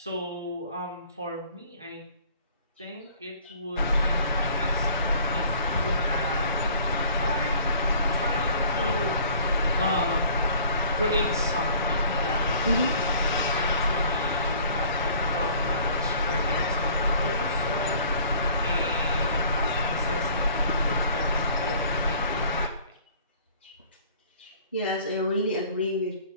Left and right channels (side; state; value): both; inverted; correlation -0.52